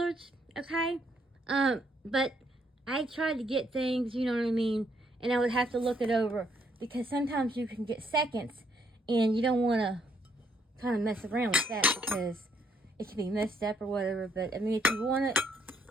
okay? But I tried to get things, you know what I mean, and I would have to look it over because sometimes you can get seconds and you don't want to kind of mess around with that because it can be messed up or whatever. But I mean, if you want it,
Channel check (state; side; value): normal; both; correlation 0.71